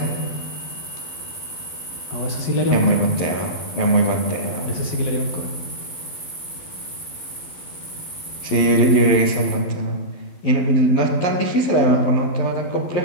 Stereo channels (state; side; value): late; right; 12 ms